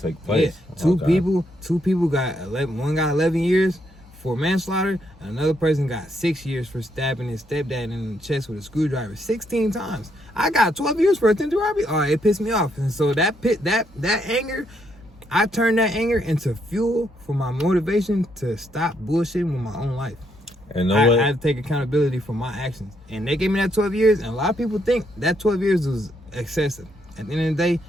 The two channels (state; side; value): normal; both; correlation 0.75